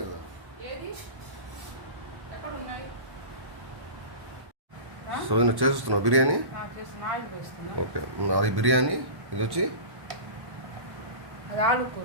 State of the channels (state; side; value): late; left; 1.1 ms